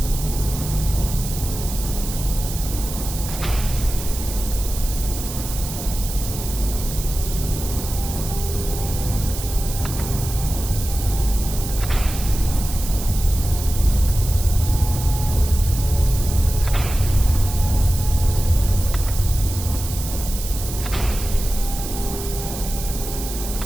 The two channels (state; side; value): noise; right; hiss, 9 dB below the sound